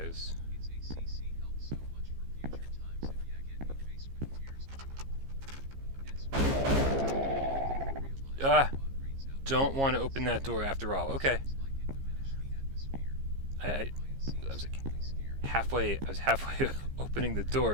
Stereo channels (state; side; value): late; left; 15 ms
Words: Don't want to open that door after all. Okay. I was like halfway. I was halfway opening the